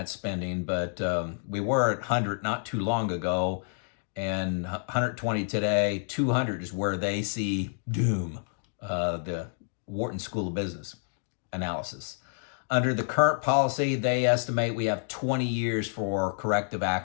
spending, but we were at 100 not too long ago, and 120 today. 200 is where they see doom. The Wharton School of Business analysis. Under the current policy, they estimate we have 20 years for corrective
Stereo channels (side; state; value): right; silent; digital silence